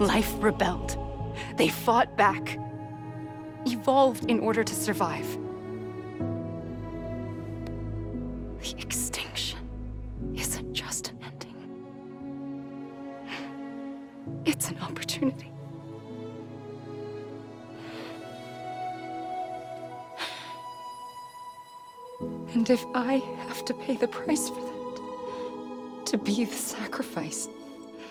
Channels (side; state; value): both; identical; correlation 1.00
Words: rebelled. They fought back, evolved in order to survive. The extinction isn't just an ending. It's an opportunity. And if I have to pay the price for that, to be the sacrifice,